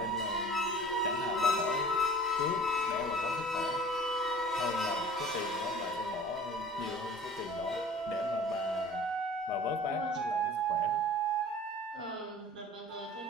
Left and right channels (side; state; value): both; normal; correlation 0.44